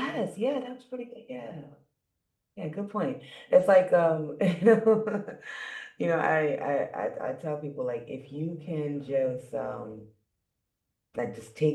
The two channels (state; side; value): identical; both; correlation 1.00